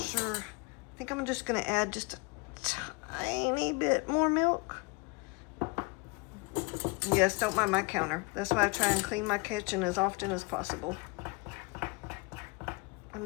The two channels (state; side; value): quieter; right; 28.9 dB